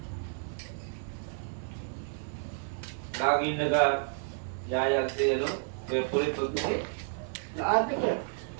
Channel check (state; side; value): silent; left; digital silence